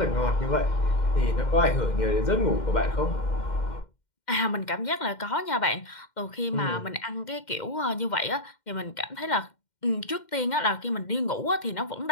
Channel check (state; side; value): late; right; 2.1 ms